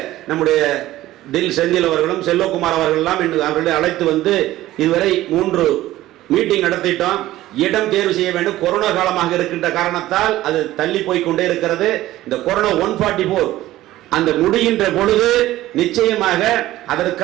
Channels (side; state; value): left; quieter; 15.5 dB